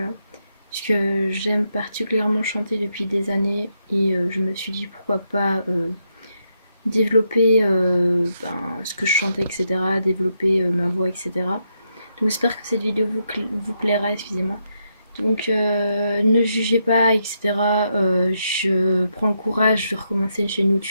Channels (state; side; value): inverted; both; correlation -0.81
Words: parce que j'aime particulièrement chanter depuis des années et je me suis dit pourquoi pas développer ce que je chantais, etc., développer ma voix, etc. Donc j'espère que cette vidéo vous plaira, excusez-moi. Donc ne jugez pas, etc. Je prends le courage de recommencer une chaîne